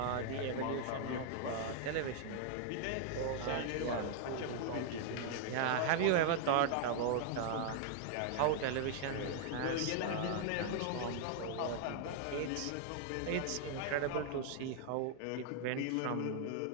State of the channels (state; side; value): different; both; correlation 0.00